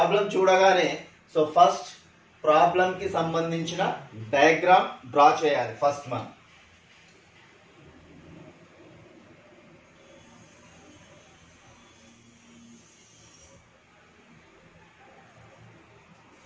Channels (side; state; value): both; identical; correlation 1.00